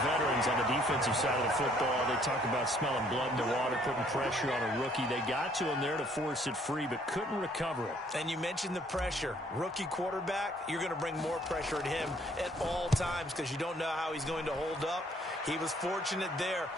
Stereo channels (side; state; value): both; normal; correlation 0.63